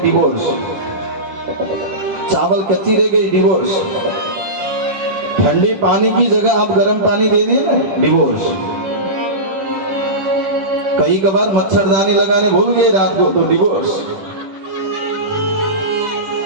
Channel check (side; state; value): left; late; 10 ms